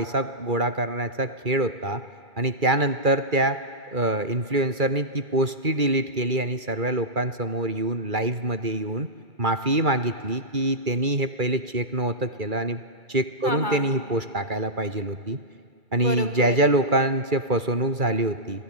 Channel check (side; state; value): left; late; 2.3 ms